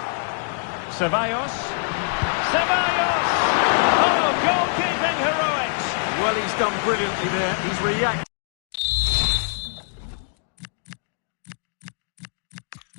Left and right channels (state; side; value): silent; right; 63 dB below the other